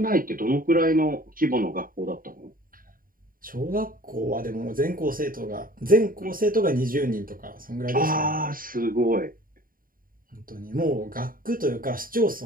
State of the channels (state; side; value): late; left; 0.41 ms